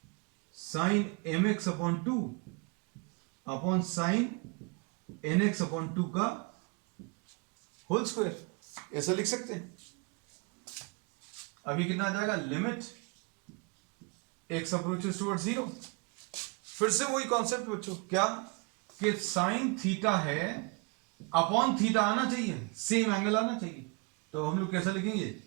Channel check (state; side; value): quieter; left; 30.4 dB